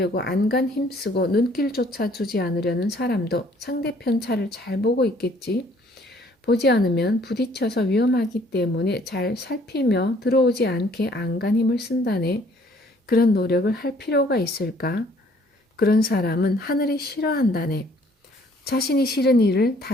안간 힘쓰고 눈길조차 주지 않으려는 사람도 상대편 차를 잘 보고 있겠지. 보지 않으면 부딪혀서 위험하기 때문에 잘 살피며 들어오지 않게 안간 힘을 쓴다네. 그런 노력을 할 필요가 있을까? 그런 사람은 하늘이 싫어한다네. 자신이 싫은 일을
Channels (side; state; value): both; normal; correlation 0.60